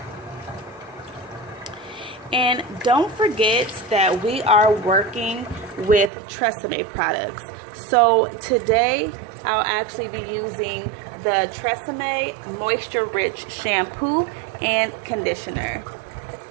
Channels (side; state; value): left; drops out; at 6.1 s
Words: And don't forget that we are working with tresseme products. So today I'll actually be using the Tresseme Moisture Rich Shampoo and Conditioner.